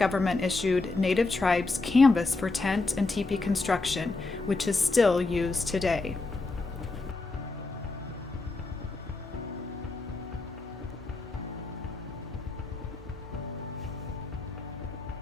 issued Native tribes canvas for tent and teepee construction, which is still used today.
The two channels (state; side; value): quieter; right; 3.5 dB